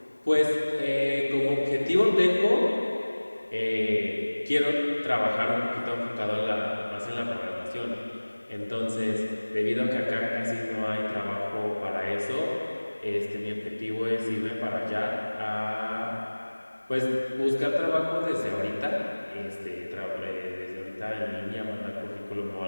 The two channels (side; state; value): both; inverted; correlation -1.00